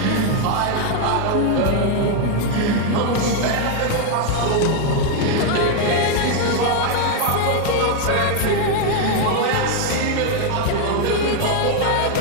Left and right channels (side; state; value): both; different; correlation 0.01